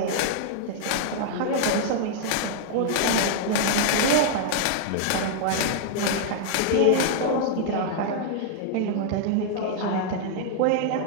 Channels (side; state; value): both; different; correlation -0.01